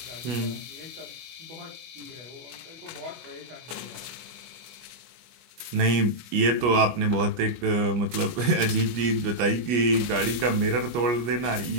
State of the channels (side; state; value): left; late; 24 ms